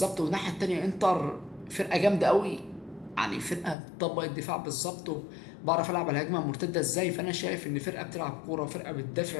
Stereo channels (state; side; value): drops out; right; at 3.8 s